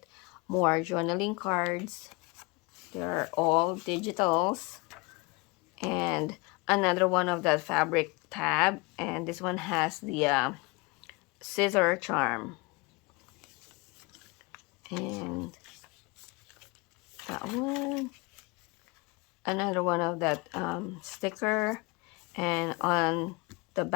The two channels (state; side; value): quieter; right; 26.9 dB